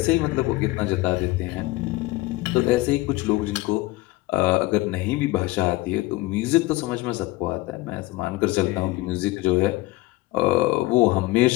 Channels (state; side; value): quieter; right; 19.7 dB